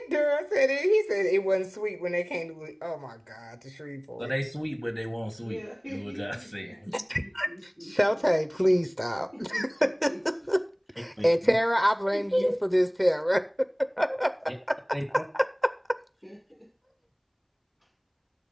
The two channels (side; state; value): both; identical; correlation 1.00